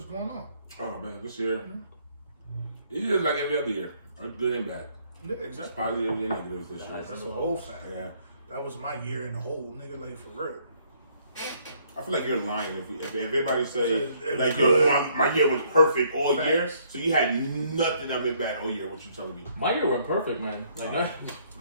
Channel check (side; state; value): both; inverted; correlation -0.66